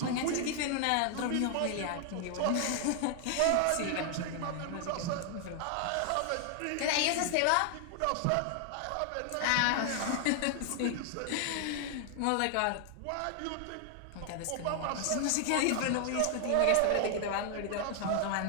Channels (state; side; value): different; both; correlation 0.00